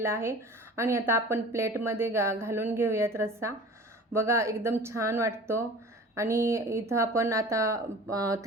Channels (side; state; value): both; normal; correlation 0.41